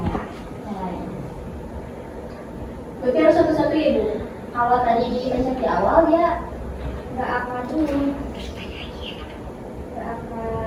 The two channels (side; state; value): both; identical; correlation 1.00